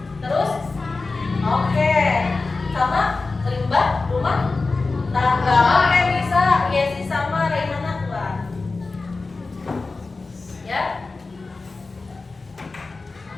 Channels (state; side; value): quieter; right; 3.8 dB